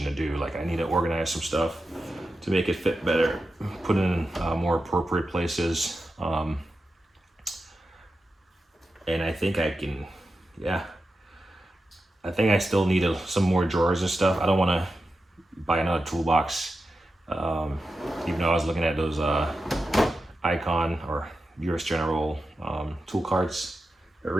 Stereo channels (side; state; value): both; normal; correlation 0.90